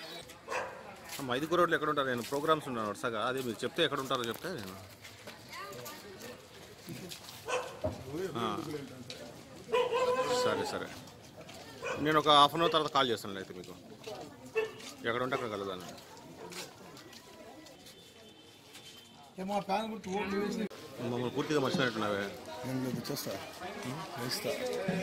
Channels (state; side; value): identical; both; correlation 1.00